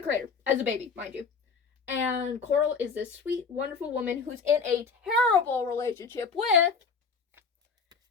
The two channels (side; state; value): right; quieter; 5.2 dB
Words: creator as a baby, mind you. And Coral is this sweet, wonderful woman who's in a terrible relationship with